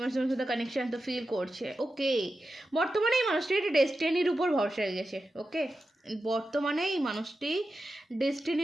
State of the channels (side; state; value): both; normal; correlation 0.91